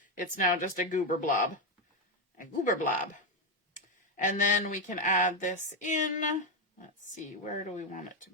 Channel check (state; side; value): normal; both; correlation 0.06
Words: It's now just a goober blob. A goober blob. And then we can add this in. Let's see, where do we want it to